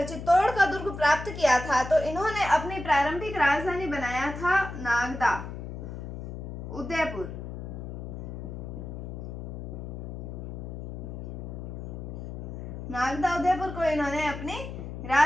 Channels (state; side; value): noise; left; hum, 8 dB below the sound